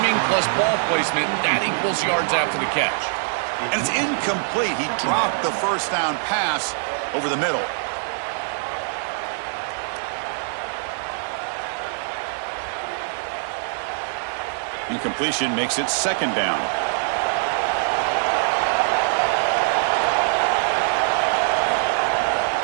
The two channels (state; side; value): silent; left; digital silence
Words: plus ball placement, that equals yards after the catch. And it's incomplete. He dropped the first down pass over the middle. Incompletion makes it second down.